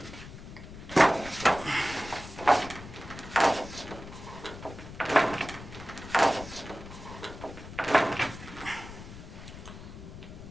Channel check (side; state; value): left; noise; rumble, 13 dB below the sound